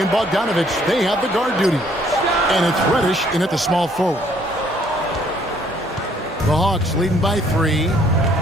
and Bogdanovich, they have the guard duty. And it's Reddish in at the small forward. The Hawks leading by 3.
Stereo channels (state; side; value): normal; both; correlation 0.63